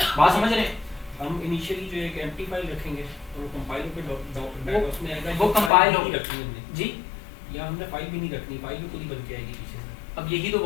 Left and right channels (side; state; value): right; drops out; at 5.7 s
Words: बात समझ रहे हैं, हम इनिशियली जो एक एम्प्टी फाइल रखेंगे और वो कंपाइल होकर उसमें आएगा, वो कंपाइल नहीं रखनी हमने जी, या हमने फाइल भी नहीं रखनी, फाइल भी खुद ही बन के आएगी पीछे से। अब यही तो